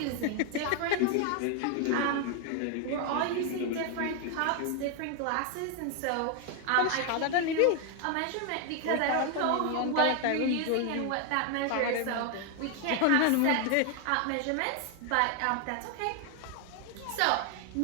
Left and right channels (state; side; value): different; both; correlation 0.01